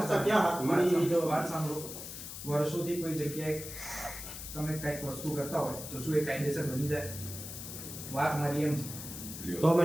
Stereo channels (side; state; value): left; noise; hiss, 10 dB below the sound